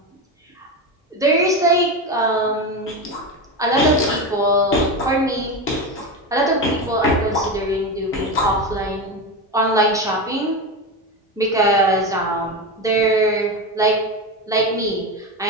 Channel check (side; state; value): both; normal; correlation 0.18